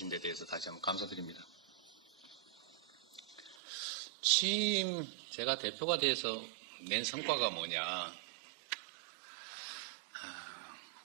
데 대해서 다시 한번 감사드립니다. 취임, 제가 대표가 돼서 낸 성과가 뭐냐,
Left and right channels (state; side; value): drops out; left; at 3.6 s